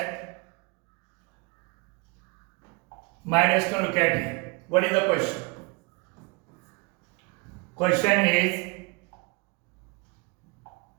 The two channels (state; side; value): quieter; left; 28.6 dB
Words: My dear student, look at here. What is the question? Question is,